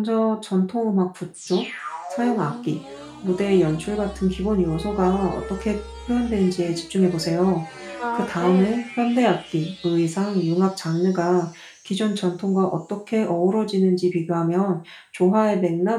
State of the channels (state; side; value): identical; both; correlation 1.00